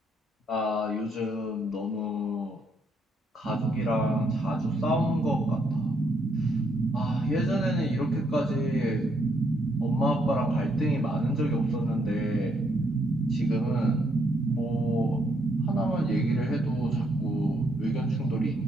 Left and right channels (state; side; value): normal; both; correlation 0.73